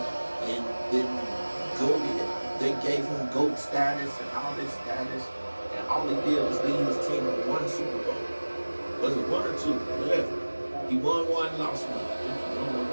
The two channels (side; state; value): both; inverted; correlation -1.00